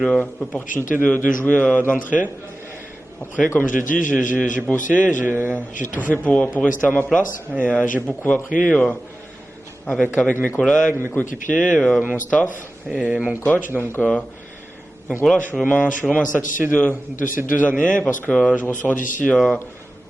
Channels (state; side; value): normal; both; correlation 0.95